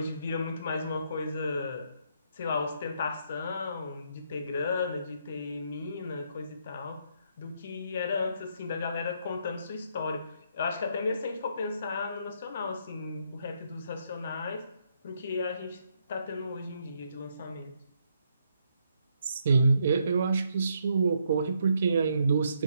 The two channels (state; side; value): inverted; both; correlation -0.74